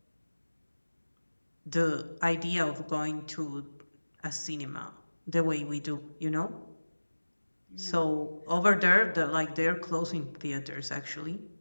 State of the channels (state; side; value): inverted; both; correlation -1.00